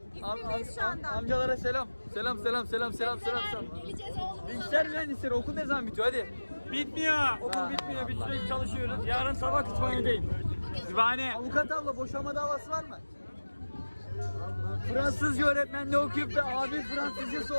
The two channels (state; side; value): inverted; both; correlation -1.00